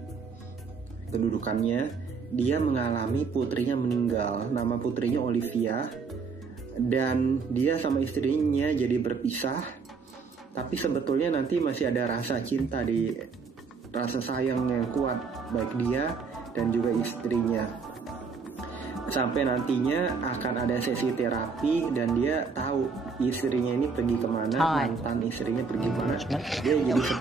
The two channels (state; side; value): quieter; left; 5.0 dB